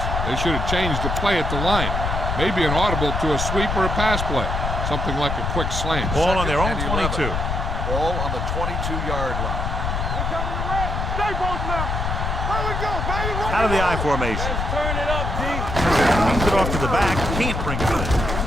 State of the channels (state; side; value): noise; left; rumble, 2 dB below the sound